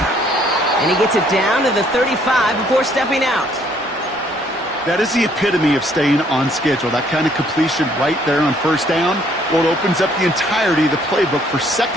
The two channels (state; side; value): normal; both; correlation 0.64